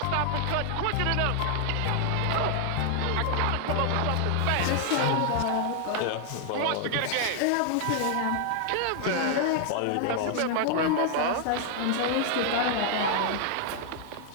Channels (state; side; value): different; both; correlation 0.00